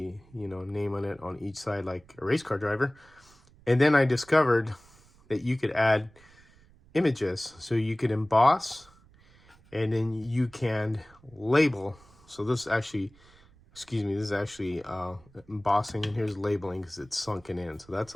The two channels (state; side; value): noise; right; rumble, 27 dB below the sound